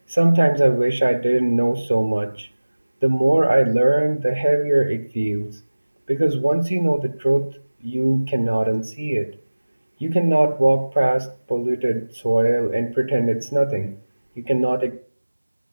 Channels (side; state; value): both; inverted; correlation -1.00